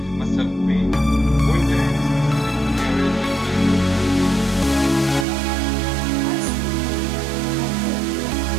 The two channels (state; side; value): drops out; left; at 5.2 s